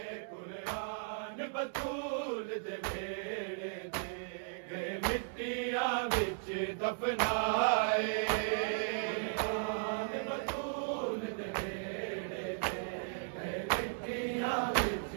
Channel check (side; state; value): left; silent; digital silence